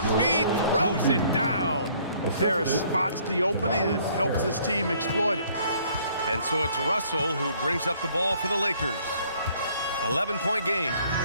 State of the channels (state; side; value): inverted; both; correlation -0.61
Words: throws it down. Harris spots the opening and helps his team exploit it. And so it's Russell who brings up the ball for the Lakers. 11-point game.